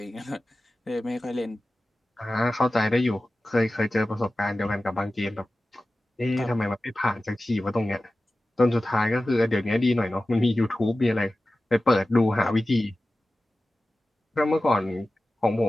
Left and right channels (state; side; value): normal; both; correlation 0.95